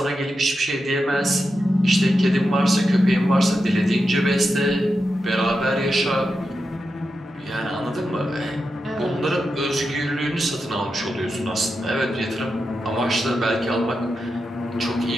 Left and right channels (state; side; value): normal; both; correlation 0.88